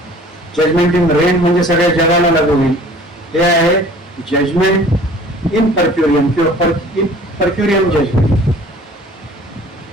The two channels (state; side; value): normal; both; correlation 0.49